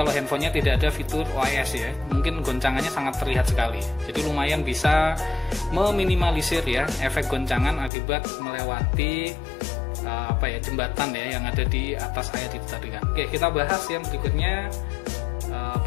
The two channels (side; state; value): right; drops out; at 7.9 s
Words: handphonenya tidak ada fitur OIS ya, mungkin goncangannya sangat terlihat sekali. Jadi lumayan bisa meminimalisir ya efek goncangan akibat melewati apa ya jembatan ya yang ada di atas air itu tadi kan. Oke, kita bahas yang berikutnya,